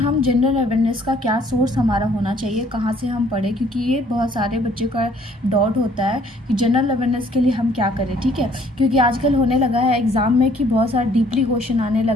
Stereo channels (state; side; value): normal; both; correlation 0.60